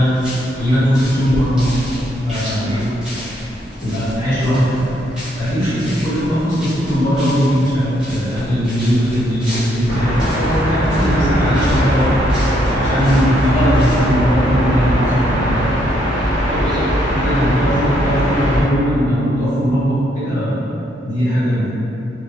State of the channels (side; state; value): both; normal; correlation 0.74